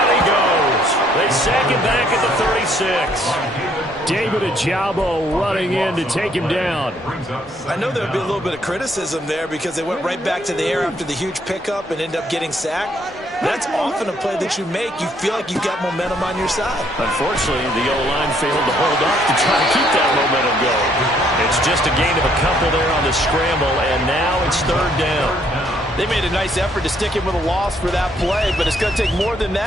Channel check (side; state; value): both; normal; correlation 0.67